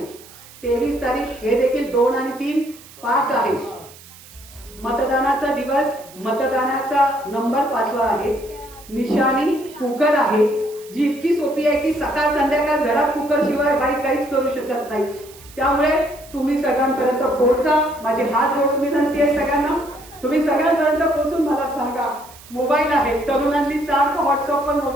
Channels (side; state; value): right; noise; hiss, 21 dB below the sound